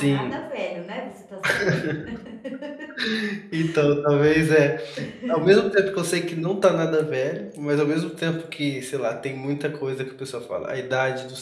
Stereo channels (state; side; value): identical; both; correlation 1.00